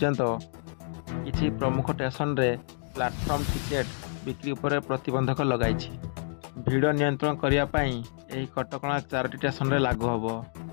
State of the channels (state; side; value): silent; right; digital silence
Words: किसी प्रमुख स्टेशन रे प्लाटफर्म टिकेट बिक्री पर प्रतिबंधक लगाई। भिड़ नियंत्रण करने यह कटकणा 4टी स्टेशन रे लागू हम।